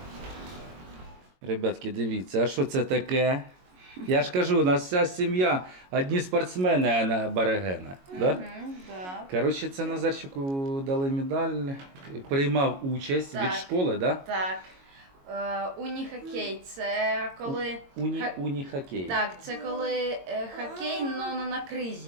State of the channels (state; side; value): late; left; 22 ms